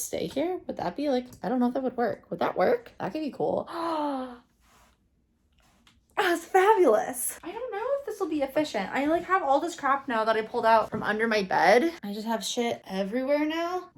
stay here? Would that be like, I don't know if that would work. Would that work? That could be cool. That's fabulous. I don't know if this will be efficient. I like have all this crap now that I pulled out from under my bed. I just have shit everywhere now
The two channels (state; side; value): identical; both; correlation 1.00